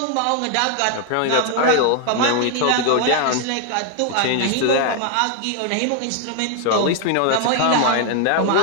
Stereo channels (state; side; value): different; both; correlation 0.00